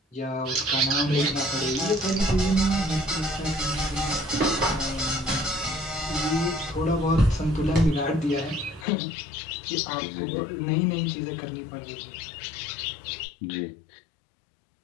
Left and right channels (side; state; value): right; drops out; at 8.8 s